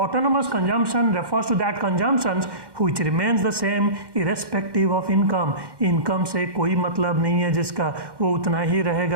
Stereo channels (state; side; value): late; left; 1.1 ms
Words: consumption refers to that consumptions which remains the same irrespective of income. Income से कोई मतलब नहीं है जिसका, वो उतना ही